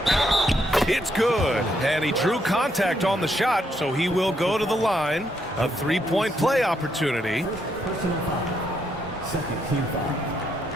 It's good. And he drew contact on the shot, so he will go to the line. A three-point play opportunity.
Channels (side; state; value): both; normal; correlation 0.76